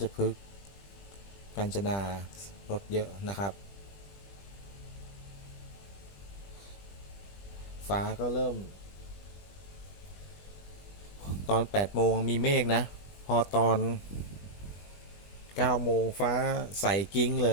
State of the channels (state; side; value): late; right; 20 ms